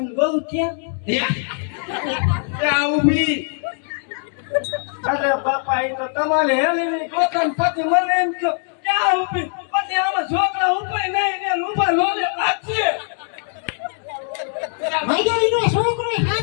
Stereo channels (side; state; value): right; silent; 58 dB below the other